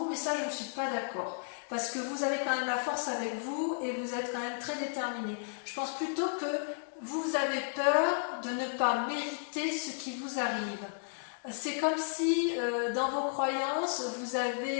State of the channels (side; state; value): right; silent; 55 dB below the other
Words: mais ça je ne suis pas d'accord. Parce que vous avez quand même la force avec vous et vous êtes quand même très déterminé. Je pense plutôt que vous avez peur de ne pas mériter ce qui vous arrive. C'est comme si dans vos croyances, vous